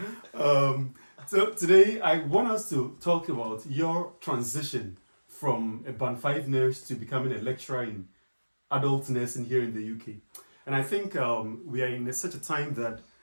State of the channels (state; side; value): inverted; both; correlation -1.00